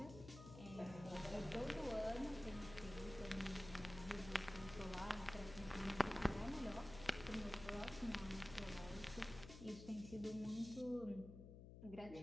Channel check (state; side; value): noise; left; hum, 12 dB below the sound